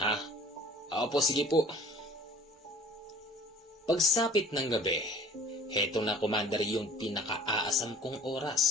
Opo, sige po. Pagsapit ng gabi, heto na, Commander, yung pinaka-aasam kong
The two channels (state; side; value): normal; both; correlation 0.48